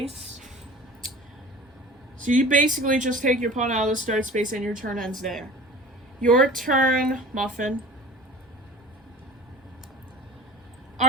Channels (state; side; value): normal; both; correlation 0.41